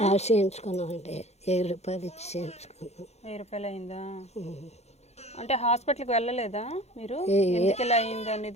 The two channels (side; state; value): right; late; 0.31 ms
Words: చేయించుకున్నామండి. 1000 రూపాయలు ఇచ్చి చేయించుకున్నాం. 1000 రూపాయలు అయిందా? అంటే హాస్పిటల్కి వెళ్ళలేదా మీరు? ఎందుకు ఇలా అయింది